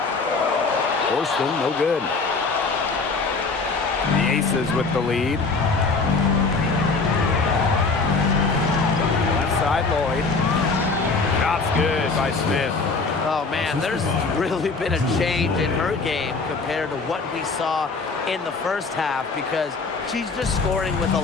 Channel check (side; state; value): right; quieter; 4.2 dB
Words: Horston, no good. The Aces with the lead. Left side, Lloyd. Shot's good by Smith. Oh, man, there's really been a change in her game compared to what we saw in the first half because she's just scoring with a